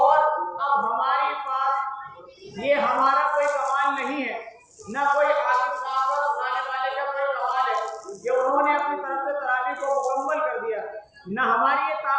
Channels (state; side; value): identical; both; correlation 1.00